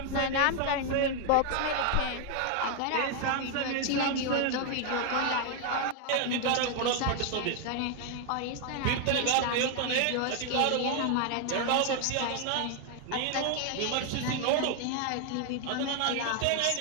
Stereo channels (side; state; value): both; different; correlation 0.00